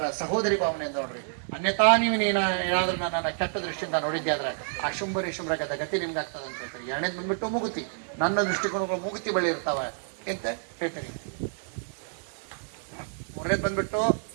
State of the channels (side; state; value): left; silent; digital silence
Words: ಸಹೋದರಿ ಭಾವನೆಯಿಂದ ನೋಡ್ರಿ. ಅನ್ಯತಾ ನೀವು ಏನಾದ್ರೂ ನನ್ನ ಕೆಟ್ಟ ದೃಷ್ಟಿಯಿಂದ ನೋಡಿದ್ದೆ ಆದ್ರೆ ಆ ಶುಂಭರಿ ಶುಭ್ರಗದ ಗತಿ ನಿಮ್ಗೆ ಆಗ್ತದೆ ಅಂತ ಹೇಳ್ತಾರೆ. 2ನೇದು ಬಂದ್ಬಿಟ್ಟು ಮೂಗುತಿ. ನನ್ನ ದೃಷ್ಟಿಕೋನಗಳು ಮೂಗುತಿ ಬಳಿ ಇರ್ತಾವ ಅಂತ ಹೇಳ್ತಾರೆ. 3ನೇದು ಬಂದ್ಬಿಟ್ಟು